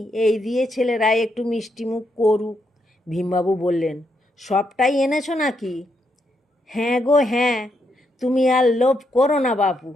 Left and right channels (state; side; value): normal; both; correlation 0.79